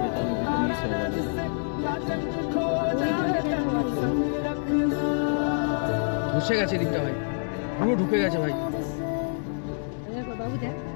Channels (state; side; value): silent; right; digital silence